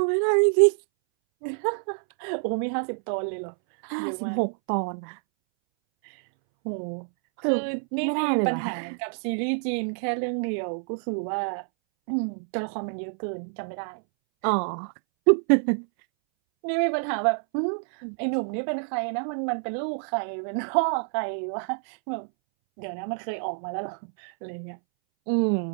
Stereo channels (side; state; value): left; silent; 60 dB below the other